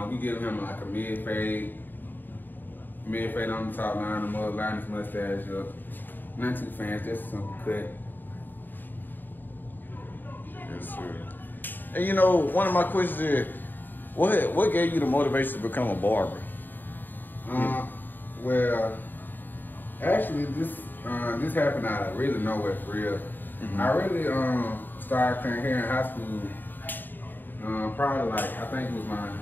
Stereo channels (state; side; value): late; right; 0.091 ms